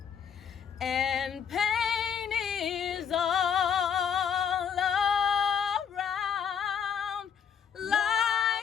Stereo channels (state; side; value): quieter; right; 7.5 dB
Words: and pain is all around,